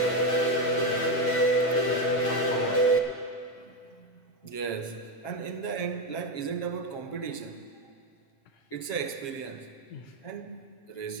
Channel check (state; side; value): late; right; 8.7 ms